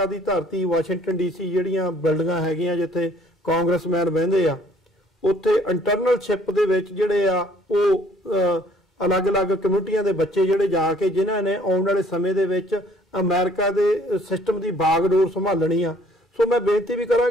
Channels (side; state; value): both; normal; correlation 0.59